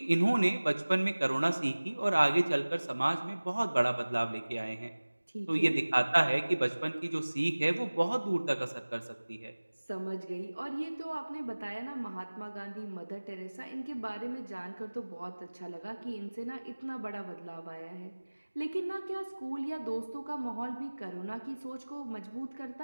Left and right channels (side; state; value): both; inverted; correlation -1.00